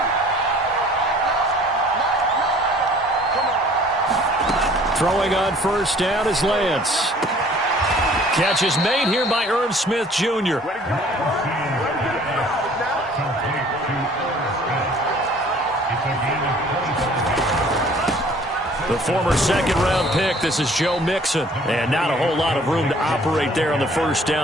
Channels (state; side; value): normal; both; correlation 0.53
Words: Throwing on first down is Lance. Catch is made here by Irv Smith Jr. The former second-round pick, this is Joe Mixon. And not a whole lot of room to operate there on the first